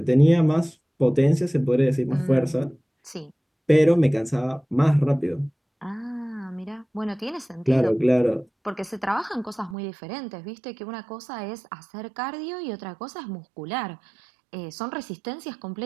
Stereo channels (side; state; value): left; drops out; at 9.8 s